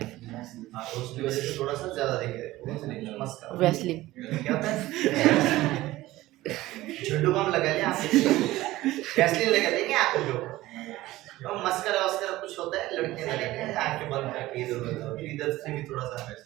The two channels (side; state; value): left; quieter; 17.2 dB